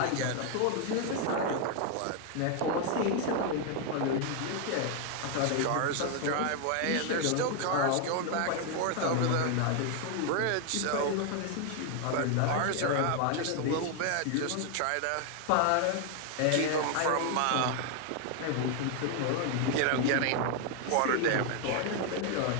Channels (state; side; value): different; both; correlation 0.00